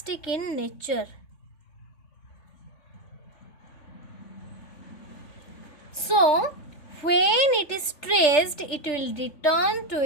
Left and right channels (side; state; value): right; late; 3.4 ms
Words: in nature. So, when it is stressed, it will return to